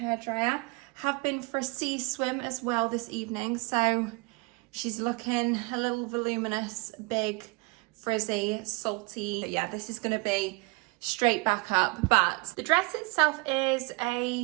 Have been for a sea swim as well this evening, so she's looking a little voluminous, big, frizzy, salty. But yeah, this is gonna be straight back up. But the dress itself is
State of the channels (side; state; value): left; quieter; 26.8 dB